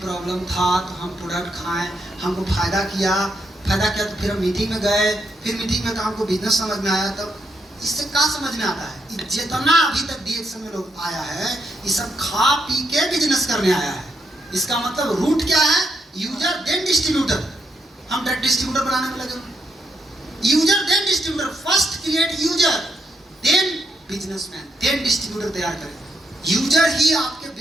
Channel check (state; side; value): normal; both; correlation 0.79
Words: था तो हम प्रोडक्ट खाएं, हमको फायदा किया तो फिर हम मीटिंग में गए, फिर मीटिंग में तो हमको बिजनेस समझ में आया। तब इससे क्या समझ में आता है, जितना अभी तक डीएक्शन में लोग आया है ये सब खा पी के बिजनेस करने आया है। इसका मतलब रूट क्या है, यूजर देन डिस्ट्रीब्यूटर। हम डायरेक्ट डिस्ट्रीब्यूटर बनाने में लगे। User then distributor, first create user then businessman then distributor तैयार करें। यूजर ही आपके